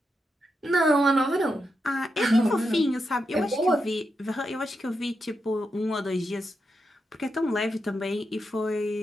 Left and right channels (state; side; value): normal; both; correlation 0.85